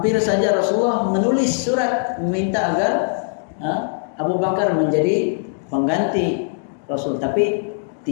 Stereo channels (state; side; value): silent; right; digital silence